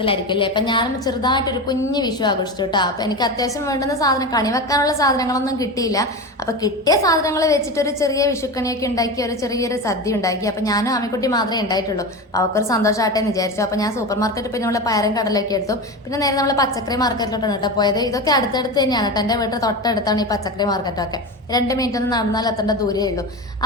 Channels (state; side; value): normal; both; correlation 0.24